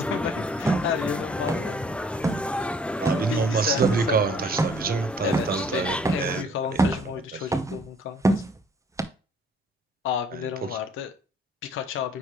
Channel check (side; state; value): both; normal; correlation 0.59